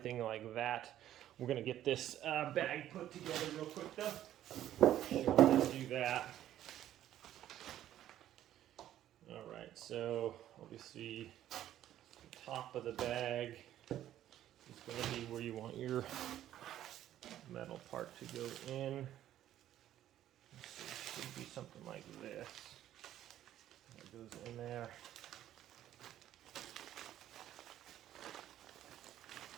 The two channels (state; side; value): quieter; left; 12.2 dB